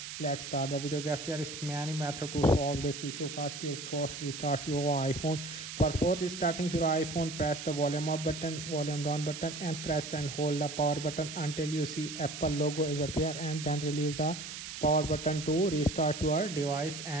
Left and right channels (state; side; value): noise; right; hiss, 9 dB below the sound